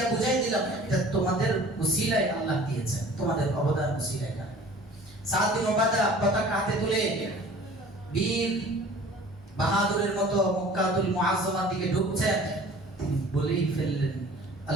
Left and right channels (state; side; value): normal; both; correlation 0.47